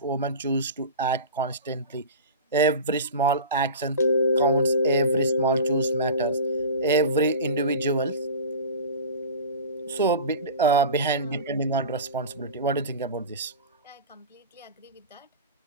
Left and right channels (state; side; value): inverted; both; correlation -0.33